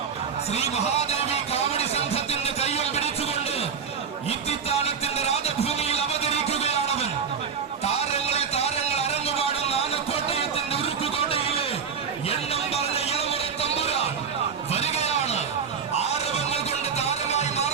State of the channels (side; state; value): left; quieter; 6.5 dB